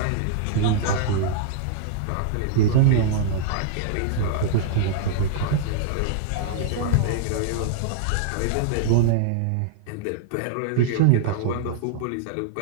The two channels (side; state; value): both; different; correlation -0.01